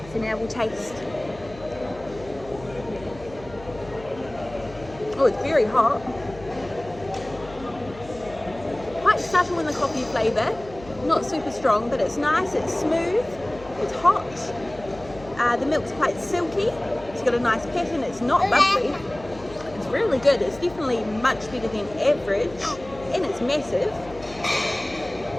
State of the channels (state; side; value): noise; left; hum, 18 dB below the sound